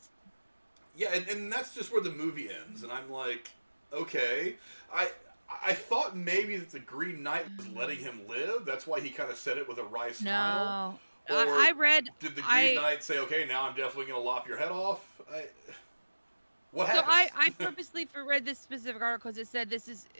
Yeah, and that's just where the movie ends. And I'm like, okay. I thought maybe that the Green Knight was letting him live. That's why he kind of said it with a wry smile. No, Or I read. did the Green Knight say, "Okay, now I'm definitely going to lop your head off"? What happened? So I purposely read this specific article because it said this is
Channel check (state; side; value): inverted; both; correlation -1.00